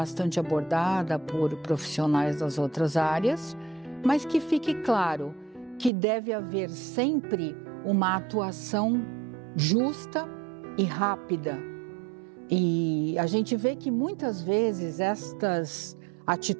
abordada por profissionais das outras áreas, mas que fique claro que deve haver sempre uma atuação justa e rápida. E a gente vê que muitas vezes estas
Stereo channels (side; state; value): left; drops out; at 5.9 s